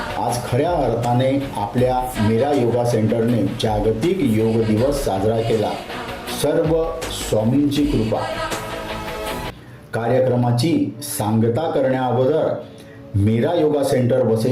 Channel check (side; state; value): both; identical; correlation 1.00